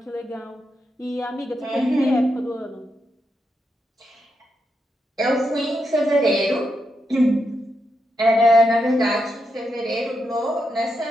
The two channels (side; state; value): both; normal; correlation 0.84